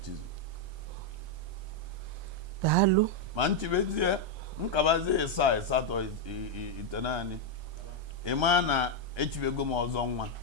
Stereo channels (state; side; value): late; left; 1.3 ms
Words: daalụ ma nchibezie nkabazie 7 8 ite naanị ịma na echibego m ọzọ nwa